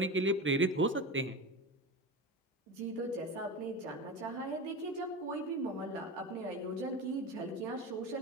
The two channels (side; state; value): both; normal; correlation 0.26